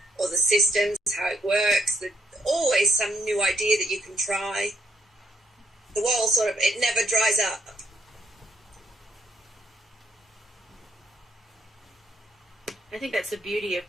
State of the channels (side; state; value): both; normal; correlation 0.73